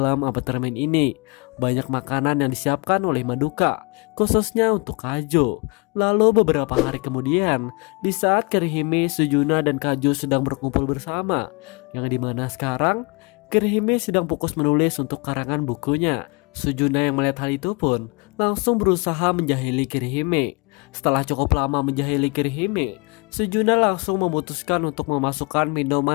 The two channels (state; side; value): quieter; right; 29.2 dB